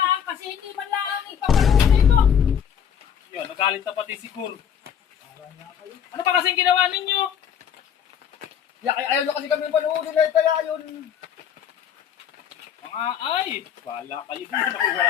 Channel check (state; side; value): quieter; right; 8.5 dB